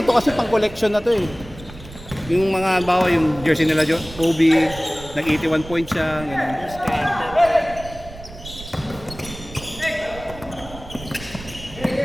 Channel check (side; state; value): right; noise; rumble, 15 dB below the sound